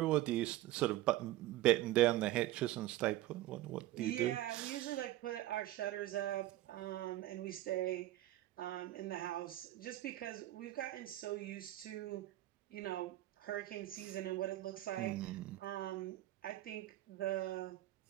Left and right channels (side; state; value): left; quieter; 15.4 dB